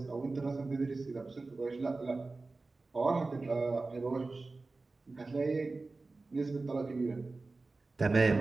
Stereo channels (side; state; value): left; quieter; 3.5 dB